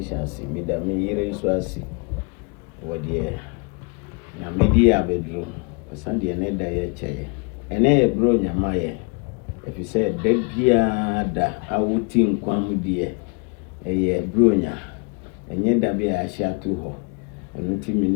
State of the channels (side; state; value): right; quieter; 33.9 dB